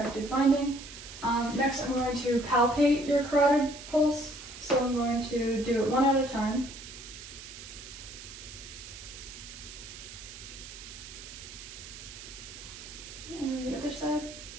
finding. Next, I'm going to palpate your carotid pulse. So I'm going to do it one at a time. And then the other side.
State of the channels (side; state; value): right; noise; hiss, 13 dB below the sound